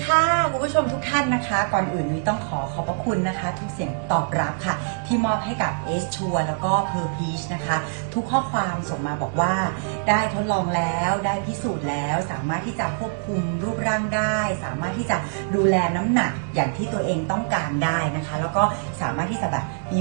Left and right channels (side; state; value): left; silent; digital silence